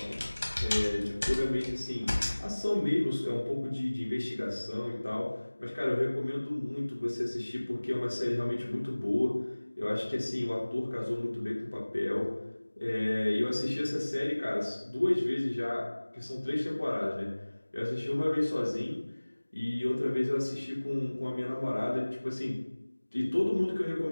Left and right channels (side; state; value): both; inverted; correlation -1.00